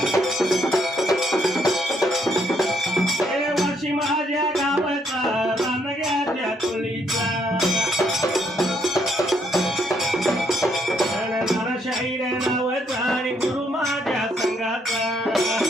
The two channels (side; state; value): both; normal; correlation 0.72